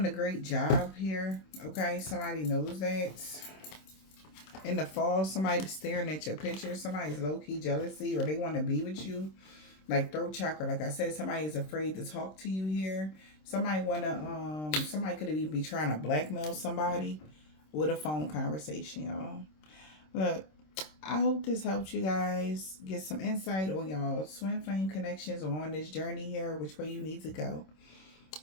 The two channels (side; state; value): right; late; 26 ms